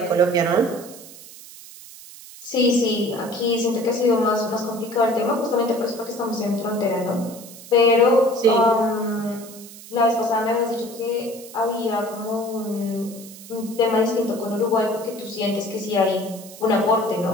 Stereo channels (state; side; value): noise; right; hiss, 17 dB below the sound